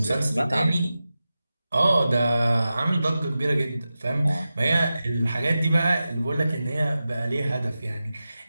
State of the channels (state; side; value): inverted; both; correlation -0.93